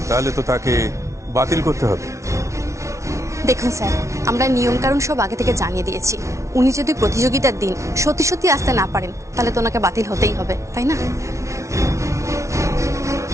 তাহলে তো তাকে বাতিল করতে হবে। দেখুন স্যার, আমরা নিয়ম কানুন সব আগে থেকে জানিয়ে দিয়েছি। উনি যদি প্রতিযোগিতার দিন সত্যি সত্যি আসতে না পারেন, তাহলে তো ওনাকে বাতিল হতেই হবে, তাই না?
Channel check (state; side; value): late; left; 0.14 ms